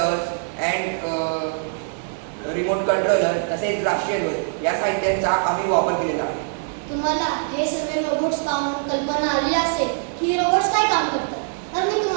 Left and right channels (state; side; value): silent; left; digital silence